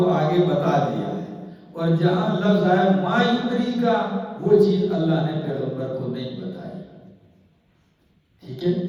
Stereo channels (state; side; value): identical; both; correlation 1.00